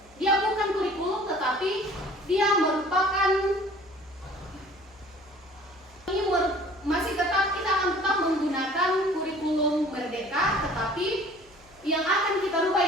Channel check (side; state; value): left; noise; hum, 29 dB below the sound